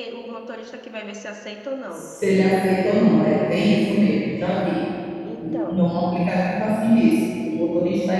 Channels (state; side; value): identical; both; correlation 1.00